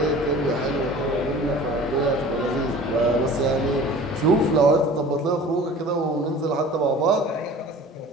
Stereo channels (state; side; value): normal; both; correlation 0.43